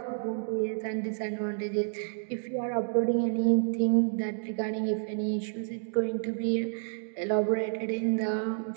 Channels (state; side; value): silent; left; digital silence